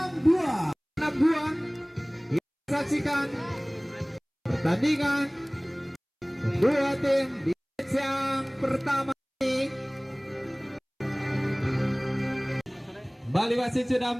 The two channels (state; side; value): identical; both; correlation 1.00